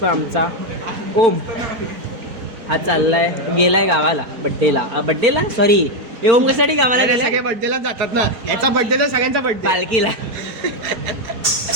आमचा ओम. हा चाललाय, गेलाय गावाला बड्डेला सॉरी. हे ओम कशासाठी गावाला गेलाय? सगळे बर्थडेला जातात ना. याचा बर्थडे तर सगळ्यांचा बर्थडे. पालखीला.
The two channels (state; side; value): late; left; 4.4 ms